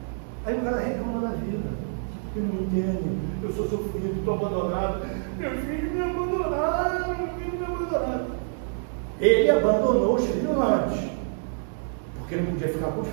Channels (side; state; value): left; silent; digital silence